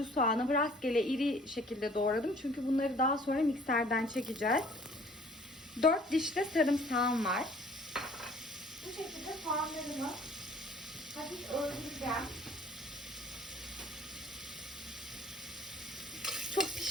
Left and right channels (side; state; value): both; normal; correlation 0.54